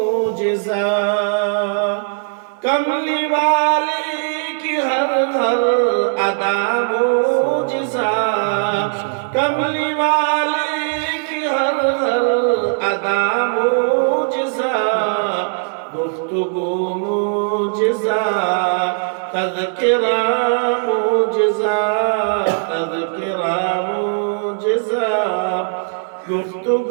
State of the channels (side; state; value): left; silent; 67 dB below the other